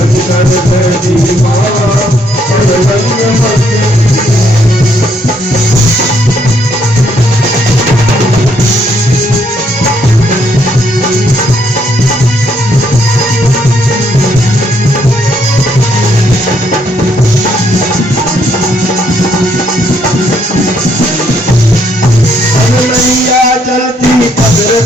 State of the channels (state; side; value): normal; both; correlation 0.71